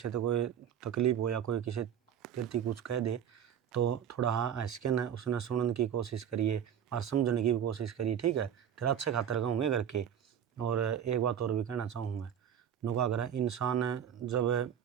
तो कोई तकलीफ हो या कोई किसी तेरती कुछ कह दे तो थोड़ा हाँ हंस के न उसने सुनने की कोशिश करिए और समझने की भी कोशिश करिए, ठीक है? तेरा अच्छे खातर कहूँगे करके। और एक बात और भी कहना चाहूँ मैं, नुका अगर इंसान जब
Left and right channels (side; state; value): left; quieter; 9.1 dB